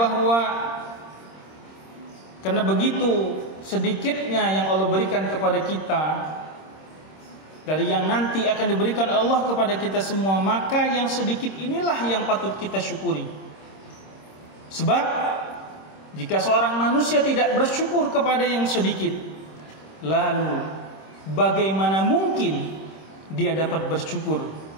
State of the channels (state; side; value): late; right; 26 ms